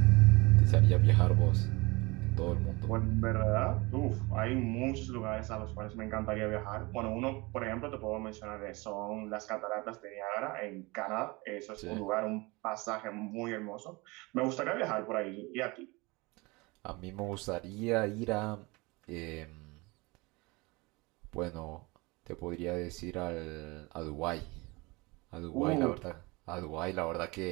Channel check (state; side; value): quieter; left; 24.8 dB